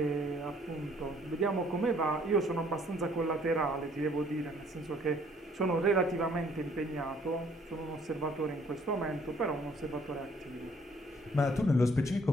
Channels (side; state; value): both; normal; correlation 0.61